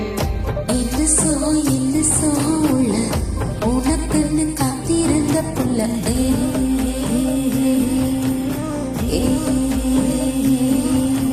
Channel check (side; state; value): both; identical; correlation 1.00